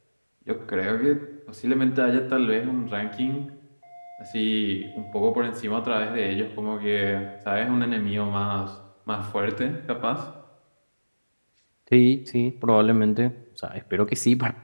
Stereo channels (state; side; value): inverted; both; correlation -1.00